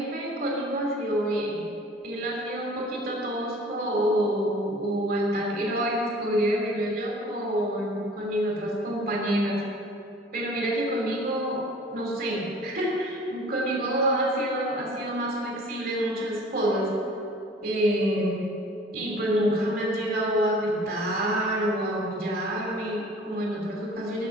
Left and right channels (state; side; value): normal; both; correlation 0.49